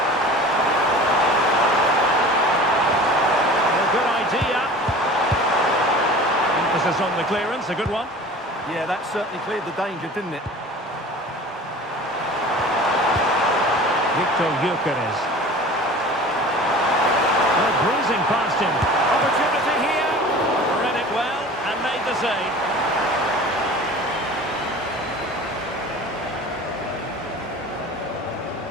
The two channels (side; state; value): both; normal; correlation 0.40